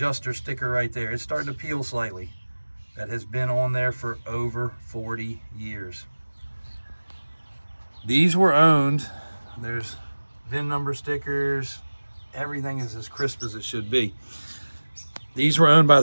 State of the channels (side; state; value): both; inverted; correlation -1.00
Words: sticker right there, it's starting to peel slightly. That has been on there for over 40 years. These were owned, there's VIN number stickers, everything is as crisp as it should be. These were owned by